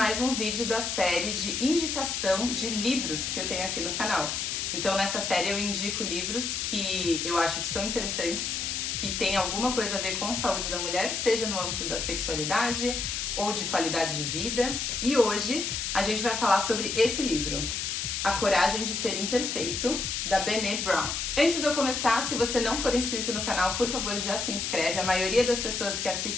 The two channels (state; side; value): noise; left; hiss, 2 dB below the sound